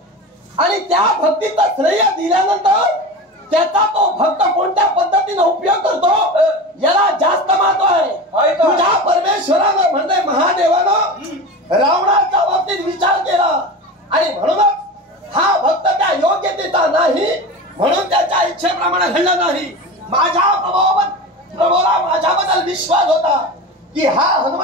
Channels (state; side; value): normal; both; correlation 0.28